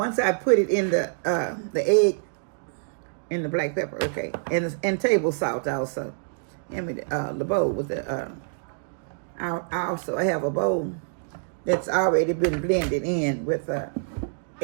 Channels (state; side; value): silent; left; digital silence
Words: I put it in the egg and the black pepper, okay, and table salt also, and the bowl with the I also have a bowl that's already been blended in with